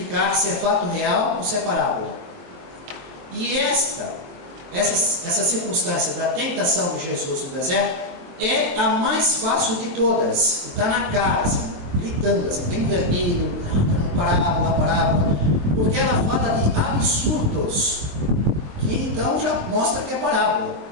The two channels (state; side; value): late; left; 23 ms